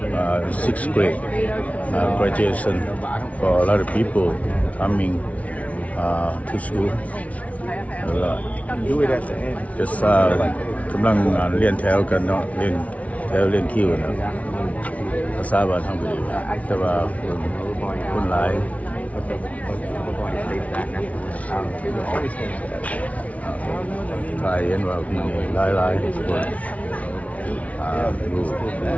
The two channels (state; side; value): late; right; 0.067 ms